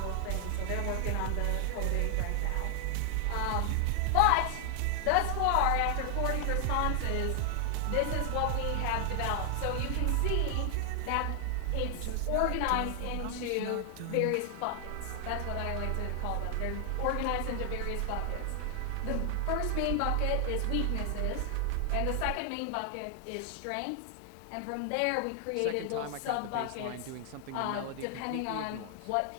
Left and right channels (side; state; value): both; different; correlation 0.00